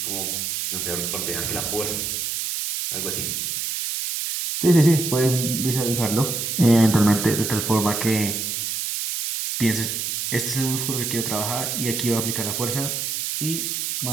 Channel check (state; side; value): noise; right; hiss, 2 dB below the sound